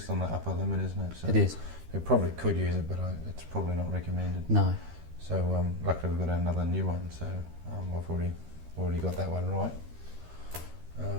on the upper limit, isn't it? So it is. you probably could use it, but it's probably not recommended. No. So luckily we've got another new one, so I've already got that one right,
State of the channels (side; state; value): left; late; 13 ms